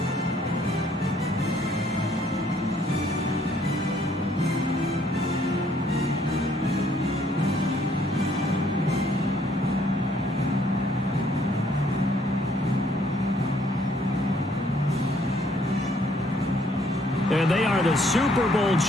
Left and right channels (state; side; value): normal; both; correlation 0.65